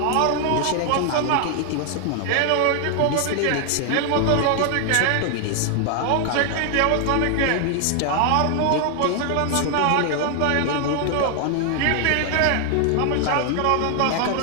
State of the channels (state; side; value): different; both; correlation 0.00